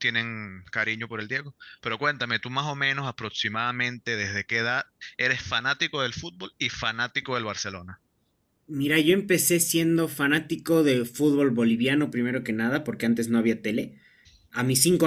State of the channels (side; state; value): both; identical; correlation 1.00